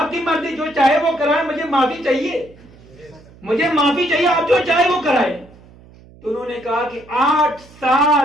کی مرضی، جو چاہے وہ کرائے، مجھے معافی چاہیے، آپ جو چاہے وہ کرائے۔ تو انہوں نے کہا کہ 8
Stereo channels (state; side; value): noise; right; hum, 24 dB below the sound